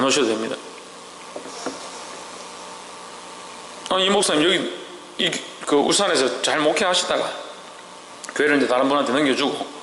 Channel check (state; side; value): identical; both; correlation 1.00